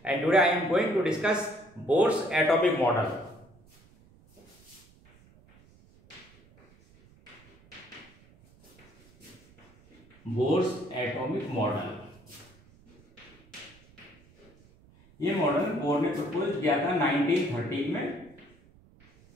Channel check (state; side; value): noise; right; rumble, 27 dB below the sound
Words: and today I am going to discuss Bohr's atomic model. Bohr's atomic model. ये मॉडल बोर ने प्रपोज किया था 1913 में.